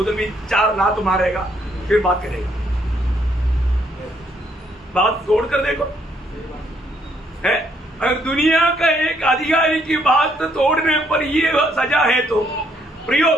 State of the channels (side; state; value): both; normal; correlation 0.70